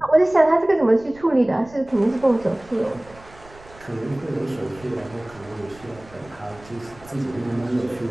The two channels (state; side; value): noise; right; rumble, 23 dB below the sound